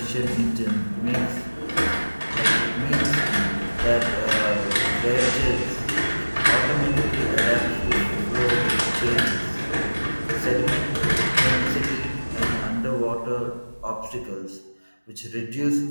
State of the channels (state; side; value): inverted; both; correlation -1.00